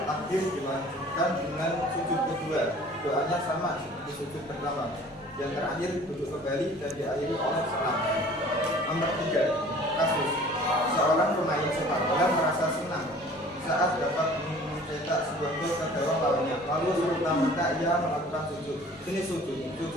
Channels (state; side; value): normal; both; correlation 0.48